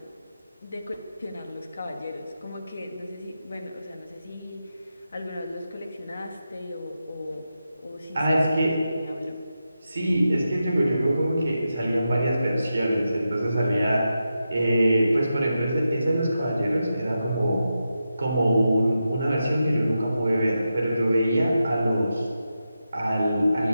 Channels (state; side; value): inverted; both; correlation -0.89